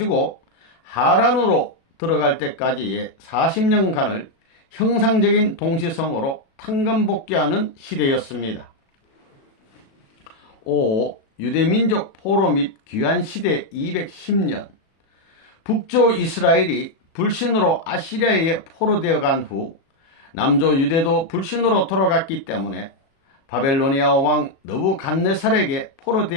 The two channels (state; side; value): late; right; 37 ms